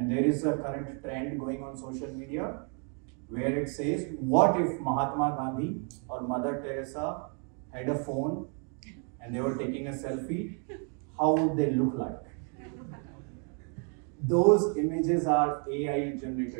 there is a current trend going on social media where it says, what if Mahatma Gandhi or Mother Teresa had a phone and they were taking a selfie? How would they look like? Those images are AI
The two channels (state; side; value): quieter; left; 38.8 dB